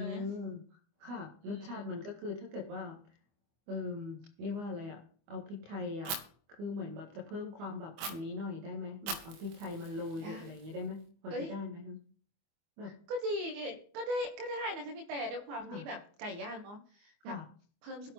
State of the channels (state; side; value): late; left; 25 ms